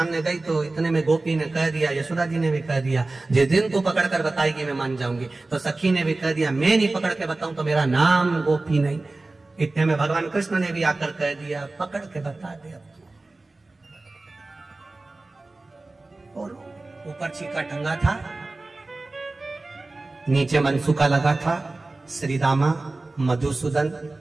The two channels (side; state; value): left; quieter; 3.2 dB